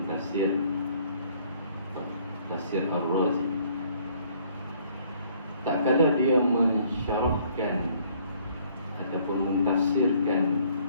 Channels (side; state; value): both; inverted; correlation -0.62